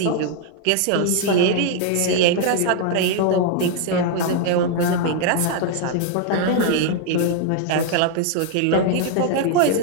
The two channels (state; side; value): different; both; correlation 0.00